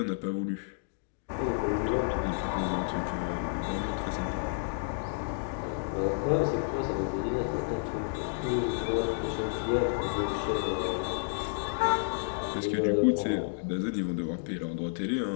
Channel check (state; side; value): silent; right; digital silence